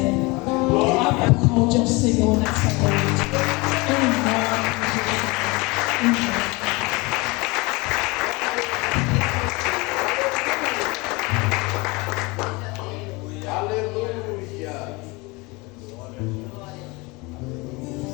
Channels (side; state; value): right; quieter; 25.2 dB